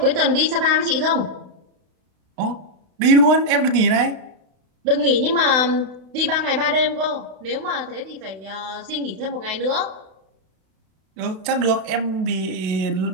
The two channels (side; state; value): left; late; 32 ms